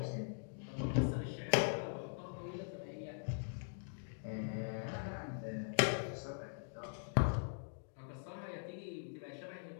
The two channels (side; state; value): right; silent; digital silence